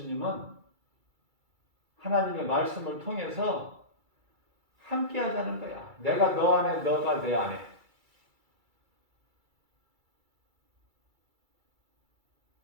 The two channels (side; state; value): left; late; 2.3 ms